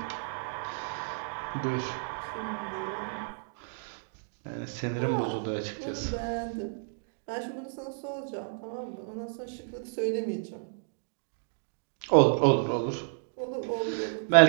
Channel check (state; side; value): silent; left; digital silence